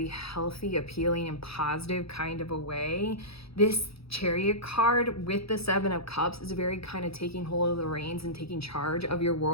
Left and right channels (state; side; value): late; right; 0.77 ms